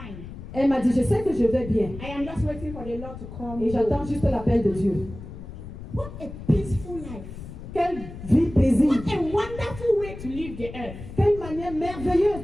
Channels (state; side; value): noise; left; rumble, 12 dB below the sound